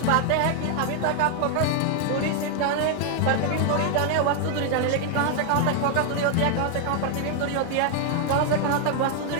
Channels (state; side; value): different; both; correlation 0.00